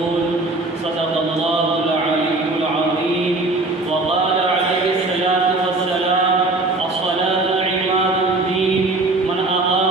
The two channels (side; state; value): left; quieter; 3.1 dB